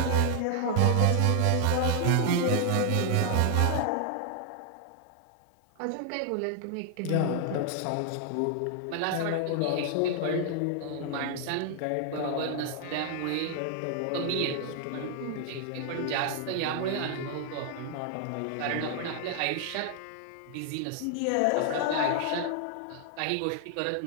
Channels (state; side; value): different; both; correlation 0.00